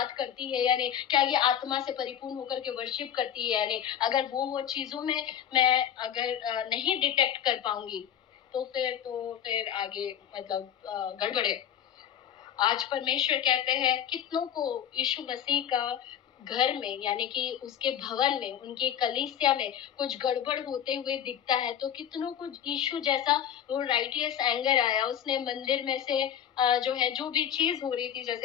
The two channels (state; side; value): quieter; right; 9.5 dB